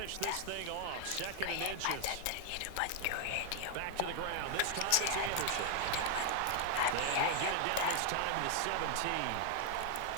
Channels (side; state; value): both; different; correlation 0.00